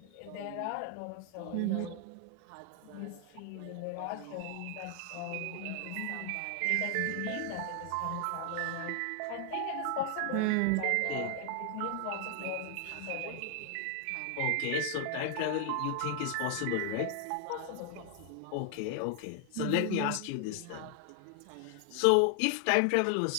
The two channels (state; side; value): different; both; correlation 0.00